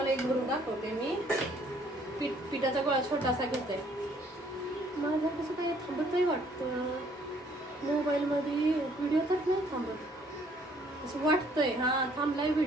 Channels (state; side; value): normal; both; correlation 0.62